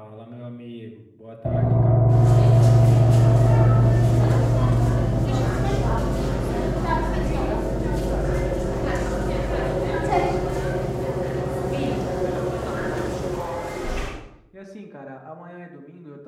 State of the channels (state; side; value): identical; both; correlation 1.00